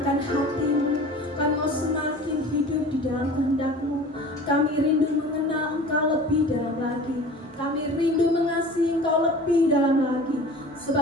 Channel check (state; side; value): normal; both; correlation 0.41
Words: hati-Mu. Kami mau semakin hidup di dalam kehendak-Mu. Kami rindu mengenal Engkau lebih dalam lagi. Kami rindu mengasihi Engkau lebih dalam lagi.